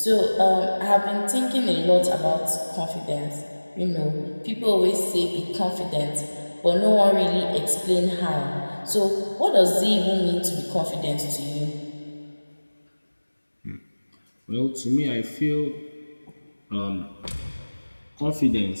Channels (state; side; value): inverted; both; correlation -1.00